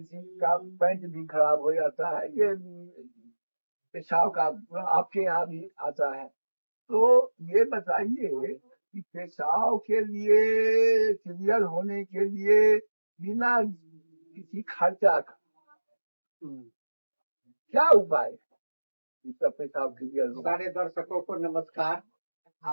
का पैंट भी खराब हो जाता है। ये पेशाब का आपके यहाँ भी आता है, तो ये बताइए कि पेशाब के लिए क्लियर होने के लिए बिना किसी खर्चा का क्या उपाय है इसका पेशाब क्लियर हो? सारे दर्शकों को नमस्कार,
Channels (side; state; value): both; inverted; correlation -1.00